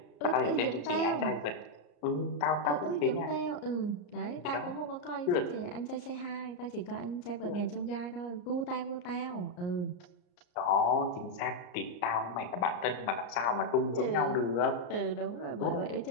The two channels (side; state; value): right; late; 34 ms